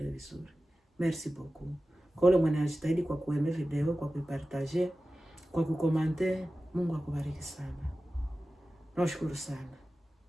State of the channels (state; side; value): normal; both; correlation 0.95